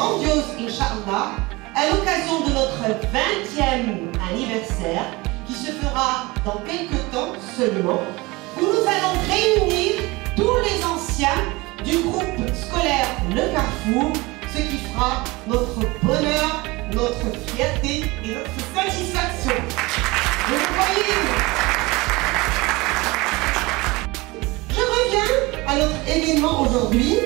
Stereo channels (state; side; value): quieter; left; 22.8 dB